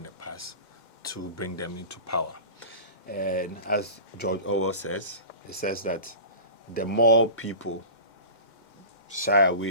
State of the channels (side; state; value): right; late; 2.1 ms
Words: the past to bring them into power. And as George Orwell says, he says that the more people shy